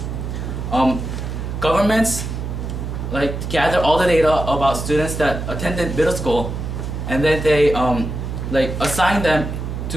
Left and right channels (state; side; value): noise; right; hum, 5 dB below the sound